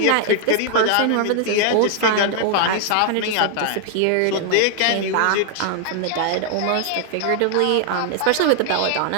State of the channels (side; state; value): both; different; correlation 0.00